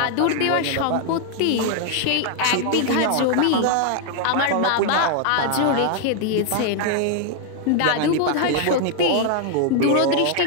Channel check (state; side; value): different; both; correlation 0.00